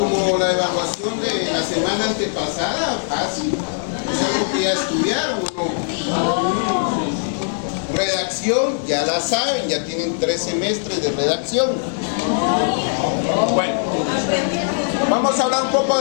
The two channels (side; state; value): right; silent; digital silence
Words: la evaluación de la semana antepasada, fácil. Es algo que ya estudiaron, ¿no? Redacción, ya la saben, ya tienen 3 semestres de redacción. Bueno, vamos a hablar un poco